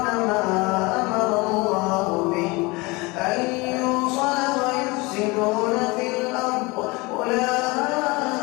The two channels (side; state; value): right; quieter; 24.6 dB